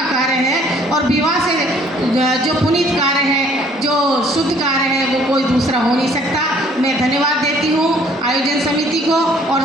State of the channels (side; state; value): both; normal; correlation 0.59